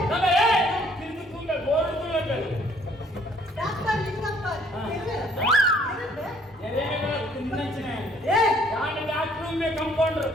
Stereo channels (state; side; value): normal; both; correlation 0.62